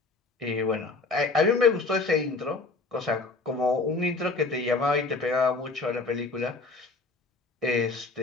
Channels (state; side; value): quieter; right; 3.7 dB